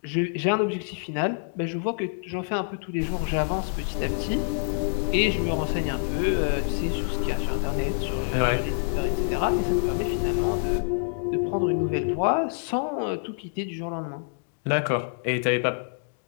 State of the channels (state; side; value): silent; right; digital silence